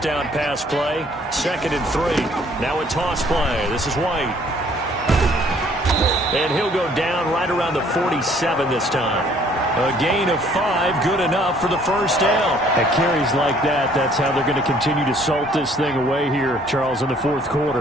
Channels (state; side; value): normal; both; correlation 0.60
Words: pass play. 2nd and 3. Now a toss play. This is White. And he'll go down right around the 47 this time. A gain of 5, good enough for the 1st down. At carries like that, that's how they're going to continue to salt this thing away here, Charles, in the 4th